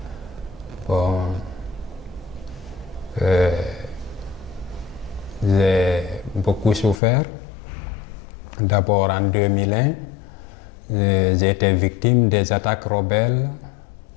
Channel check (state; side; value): drops out; right; at 7.0 s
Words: Bon, j'ai beaucoup souffert. D'abord en 2001, j'ai été victime des attaques rebelles